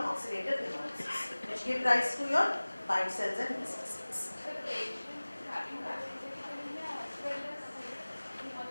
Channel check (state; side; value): inverted; both; correlation -1.00